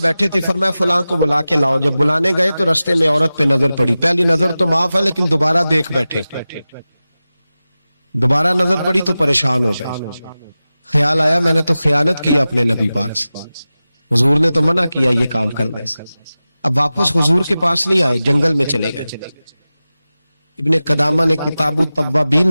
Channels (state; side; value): inverted; both; correlation -0.95